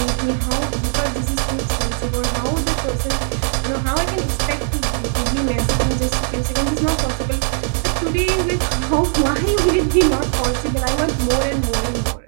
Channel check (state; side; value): silent; left; 57 dB below the other